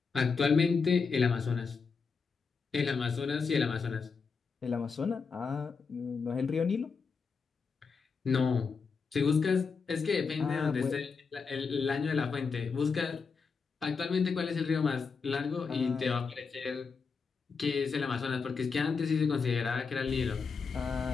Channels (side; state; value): right; quieter; 5.2 dB